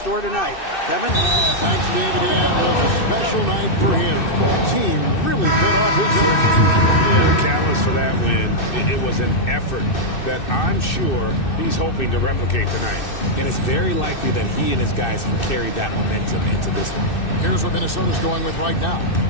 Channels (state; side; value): late; right; 2.6 ms